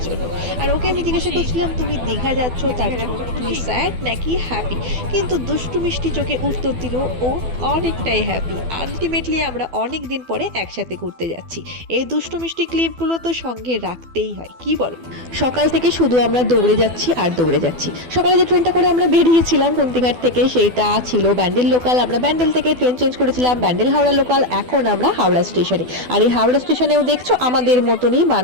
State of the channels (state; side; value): late; left; 12 ms